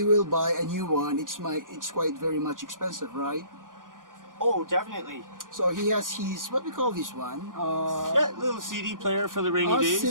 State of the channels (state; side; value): late; left; 0.89 ms